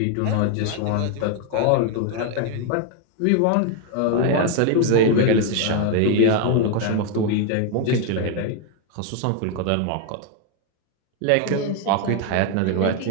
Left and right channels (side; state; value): both; different; correlation 0.01